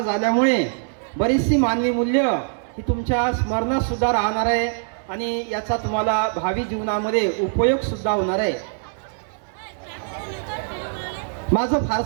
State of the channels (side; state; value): left; silent; digital silence